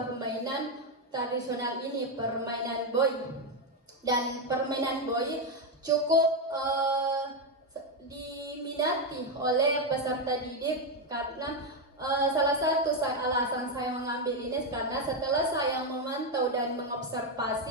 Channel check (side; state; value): both; normal; correlation 0.06